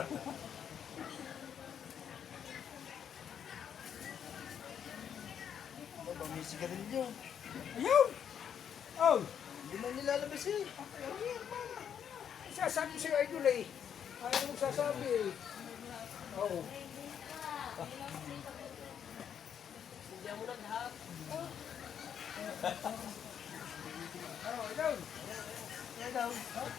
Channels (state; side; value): quieter; right; 8.4 dB